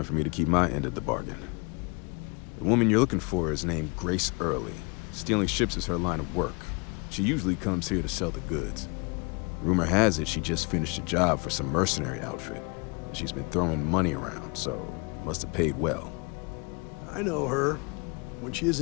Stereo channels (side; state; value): right; quieter; 31.6 dB